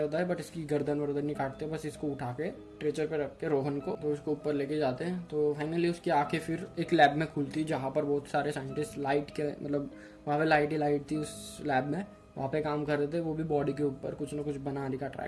है, बट इसकी गर्दन वर्दन नहीं काटते, बस इसको उठा के स्ट्रेचर पे रख के रोहन को तो उसको ऊपर लेके जाते हैं। तो फाइनली उसकी आंखें फिर एक लैब में खुलती है जहाँ पर बहुत सारे साइंटिस्ट लाइट के मतलब वहाँ पे लाइट ही लाइट थी उस लैब में, वहाँ पे काम कर रहे थे, वो भी बॉडी के ऊपर कुछ ना कुछ बनाने का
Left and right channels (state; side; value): identical; both; correlation 1.00